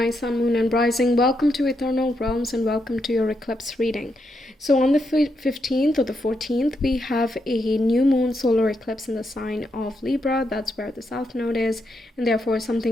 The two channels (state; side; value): normal; both; correlation 0.81